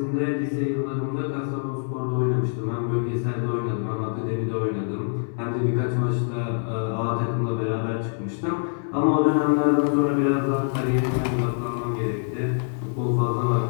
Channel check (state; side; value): silent; right; digital silence